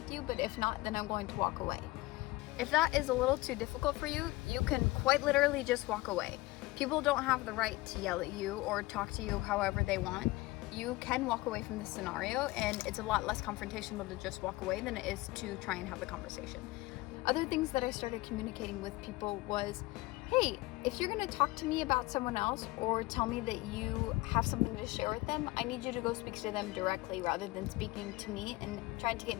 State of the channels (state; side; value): quieter; right; 20.5 dB